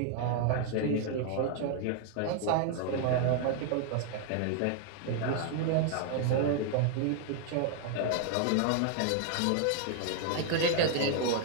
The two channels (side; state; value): both; different; correlation 0.00